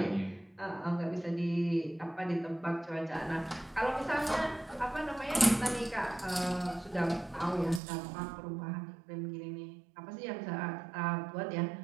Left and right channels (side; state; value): left; drops out; at 7.8 s